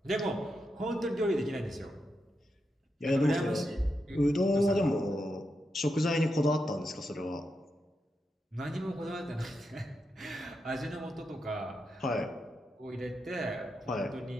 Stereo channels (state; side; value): normal; both; correlation 0.86